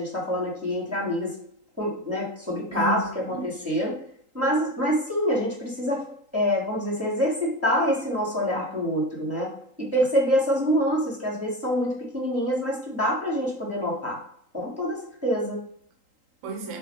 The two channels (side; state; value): left; late; 3.8 ms